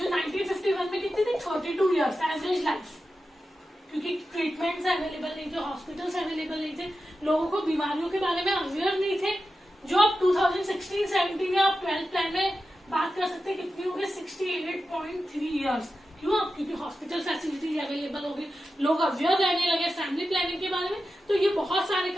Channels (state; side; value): normal; both; correlation 0.91